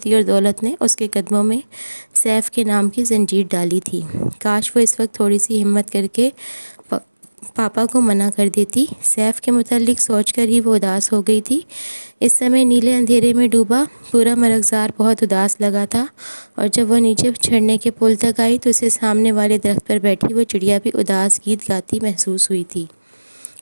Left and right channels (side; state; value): both; inverted; correlation -1.00